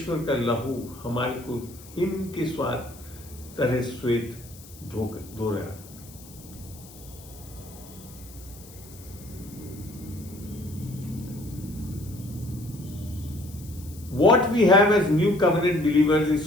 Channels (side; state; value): left; noise; hiss, 20 dB below the sound